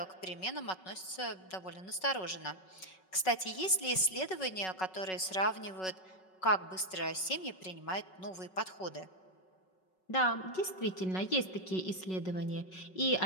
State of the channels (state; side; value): late; right; 5.4 ms